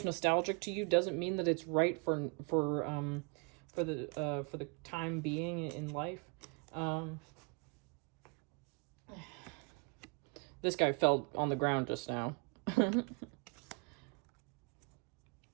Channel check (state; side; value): quieter; left; 34.7 dB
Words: nostalgic to you, doesn't mean that it's right for the time being in life. This guy fell on the ground just now.